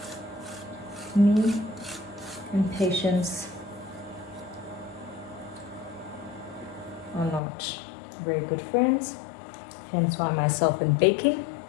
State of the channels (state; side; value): drops out; right; at 7.4 s